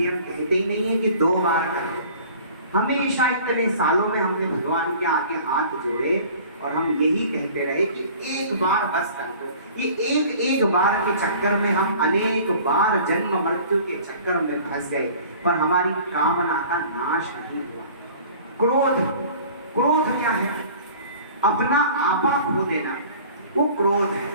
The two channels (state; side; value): inverted; both; correlation -0.46